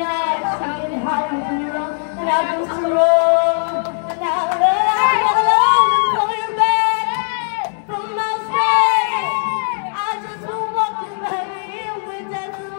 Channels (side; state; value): right; silent; digital silence